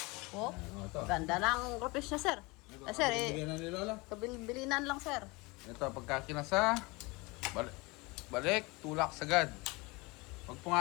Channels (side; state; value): right; quieter; 25.1 dB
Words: Oh, Ano ito? ganda ng groupings niya, sir. Sir, Bigyan na ni Lola. kabilinan lang, sir. Ito, pagka kinasa, balik, tulak sagad. Pag